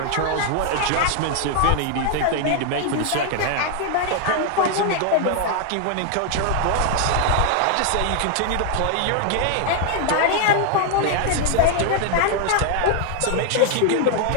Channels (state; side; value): different; both; correlation 0.00